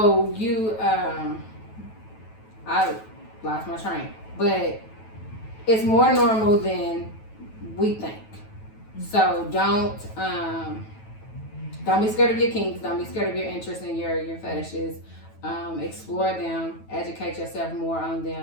you, I lost my train, but it's more normal than we think. So don't be scared of your kinks. Don't be scared of your interests and your fetishes. Explore them, educate yourself more on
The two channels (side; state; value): right; late; 9.2 ms